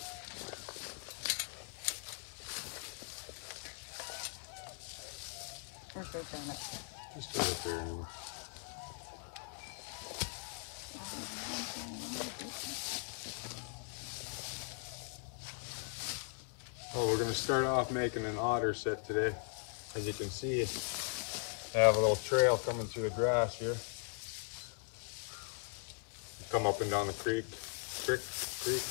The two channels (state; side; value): silent; right; 52 dB below the other